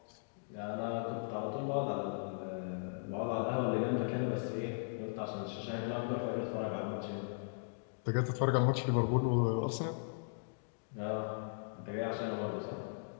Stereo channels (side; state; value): right; silent; digital silence